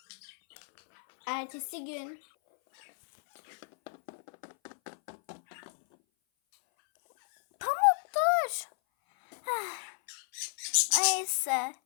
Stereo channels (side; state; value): right; silent; 56 dB below the other